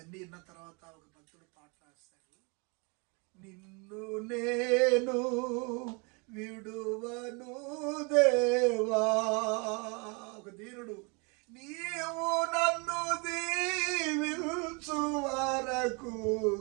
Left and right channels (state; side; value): quieter; left; 31.8 dB